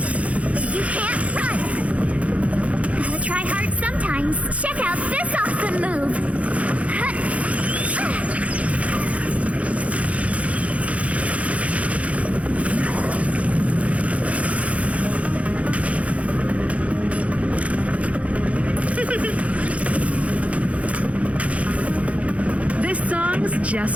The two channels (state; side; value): late; left; 0.065 ms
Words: You can't run. Gotta try hard sometimes. Check out this awesome move.